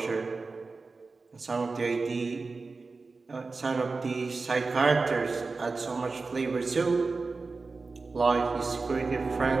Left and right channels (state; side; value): quieter; left; 4.0 dB